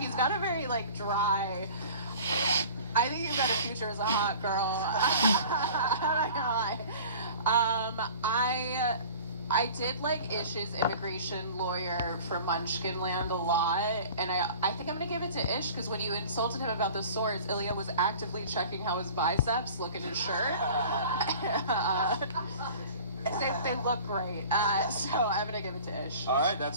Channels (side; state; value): both; inverted; correlation -0.43